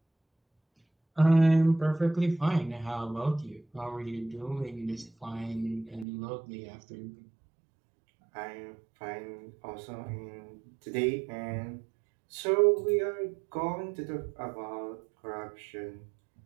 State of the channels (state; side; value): drops out; left; at 6.1 s